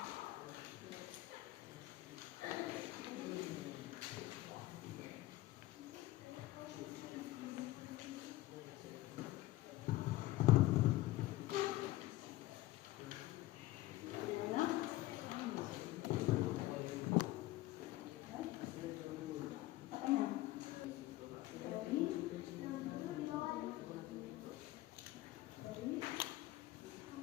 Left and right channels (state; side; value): quieter; right; 17.1 dB